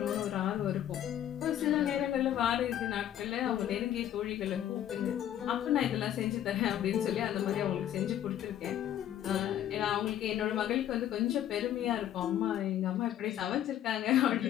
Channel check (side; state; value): right; quieter; 11.2 dB